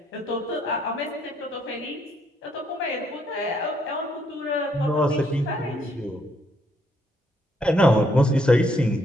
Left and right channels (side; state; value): both; normal; correlation 0.71